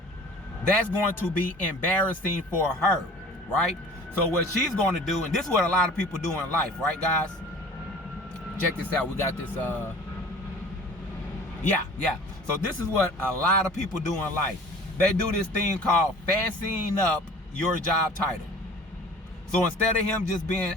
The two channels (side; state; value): both; normal; correlation 0.45